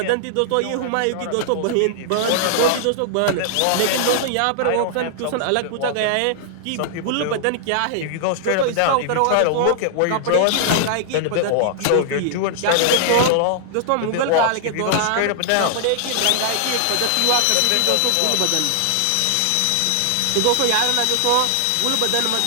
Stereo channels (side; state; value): both; different; correlation 0.00